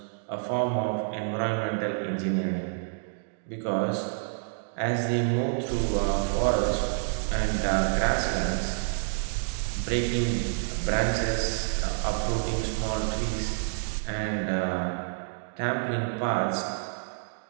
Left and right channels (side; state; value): left; silent; digital silence